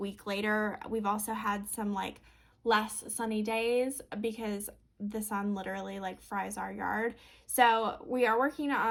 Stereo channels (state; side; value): identical; both; correlation 1.00